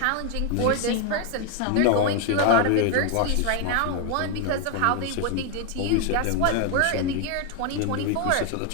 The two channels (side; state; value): both; different; correlation 0.01